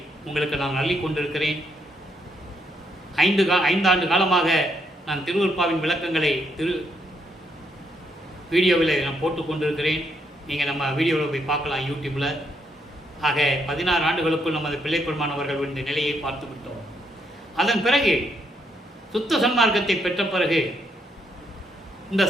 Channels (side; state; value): both; normal; correlation 0.75